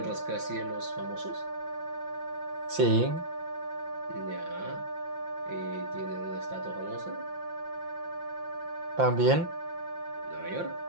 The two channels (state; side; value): late; left; 5.8 ms